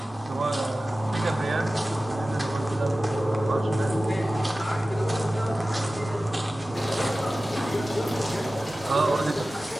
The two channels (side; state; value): both; normal; correlation 0.96